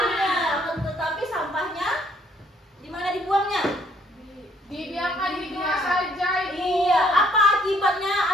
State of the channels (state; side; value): normal; both; correlation 0.65